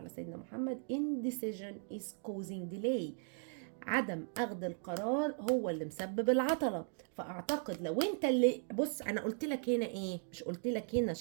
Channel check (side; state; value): left; silent; 53 dB below the other